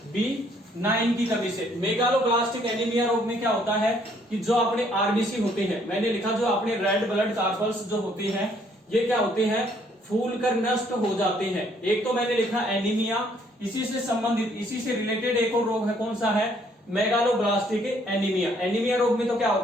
B9 की कमी से। मेगालोब्लास्टिक एनीमिया रोग में क्या होता है कि जो अपने आरबीसी होते हैं, मैंने लिखा जो अपने रेड ब्लड कार्पल्स जो होते हैं ये क्या होते हैं? फूल कर नष्ट हो जाते हैं। एक तो मैंने लिखा एनीमिया, इसी से संबंधित, इसी से रिलेटेड एक और रोग है, कौन सा है? Megaloblastic anaemia. एनीमिया रोग में तो क्या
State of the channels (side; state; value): both; normal; correlation 0.65